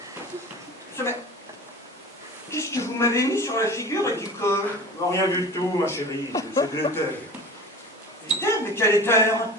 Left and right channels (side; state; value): both; normal; correlation 0.37